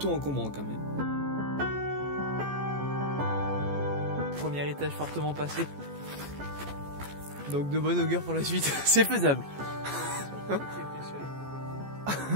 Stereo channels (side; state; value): left; late; 14 ms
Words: encombrant quand même. Premier étage fortement passé. Donc de bonne augure pour la suite. C'est faisable.